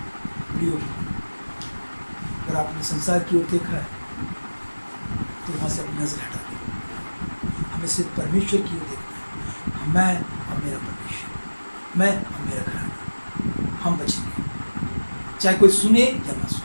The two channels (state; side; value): inverted; both; correlation -1.00